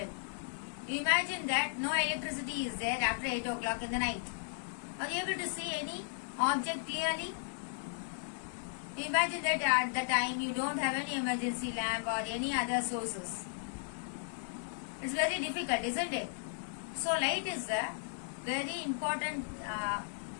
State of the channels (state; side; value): silent; right; digital silence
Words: You imagine that no electricity is there after 8 o'clock in the night. Are you able to see any object clearly? You imagine that at the time you don't have any emergency lamp or any other sources. It's very difficult, isn't it? So light is a very important